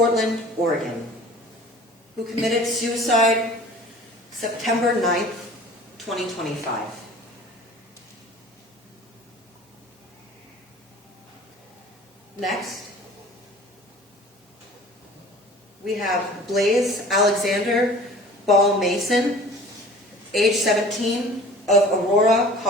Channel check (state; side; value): normal; both; correlation 0.44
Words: Oregon, who committed suicide September 9th, 2025. Next, we have Blaze Alexander Ball Mason, age 17, of Aurora,